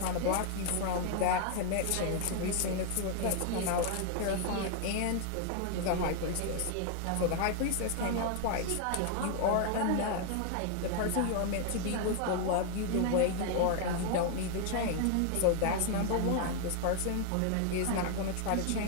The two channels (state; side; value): different; both; correlation 0.00